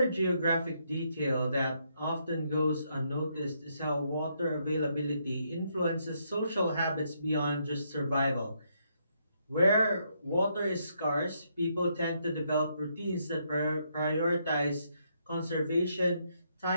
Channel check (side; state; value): both; inverted; correlation -0.75